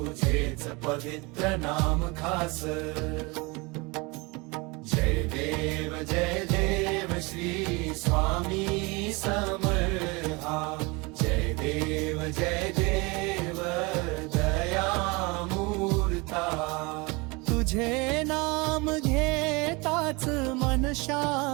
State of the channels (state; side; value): quieter; left; 26.7 dB